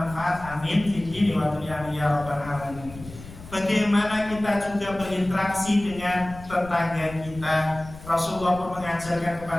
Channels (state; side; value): noise; left; rumble, 16 dB below the sound